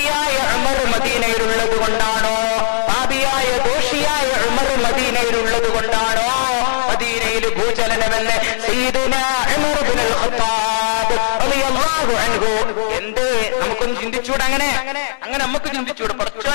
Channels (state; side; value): silent; right; digital silence